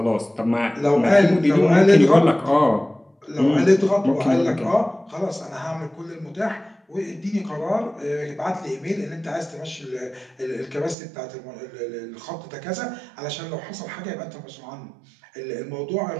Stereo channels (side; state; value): left; drops out; at 11.0 s